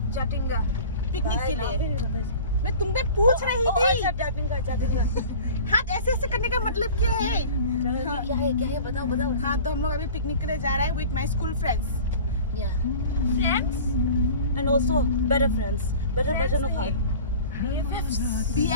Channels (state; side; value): inverted; both; correlation -0.40